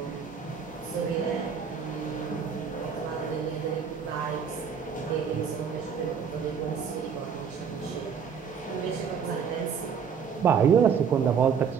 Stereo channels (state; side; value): quieter; left; 6.8 dB